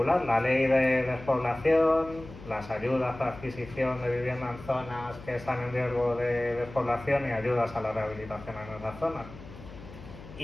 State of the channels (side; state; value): left; noise; hum, 16 dB below the sound